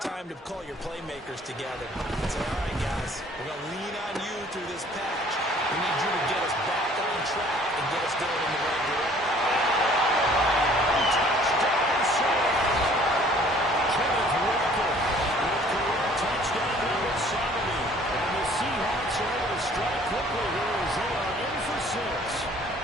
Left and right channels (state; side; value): normal; both; correlation 0.55